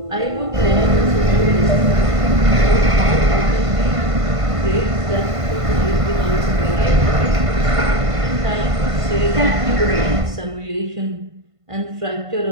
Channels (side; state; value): left; late; 1.5 ms